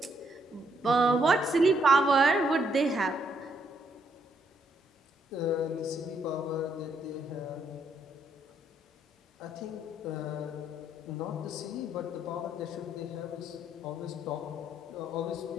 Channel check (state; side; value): normal; both; correlation 0.73